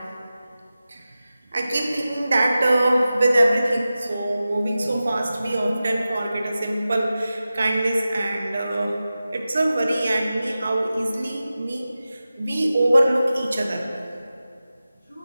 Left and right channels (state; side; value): inverted; both; correlation -0.94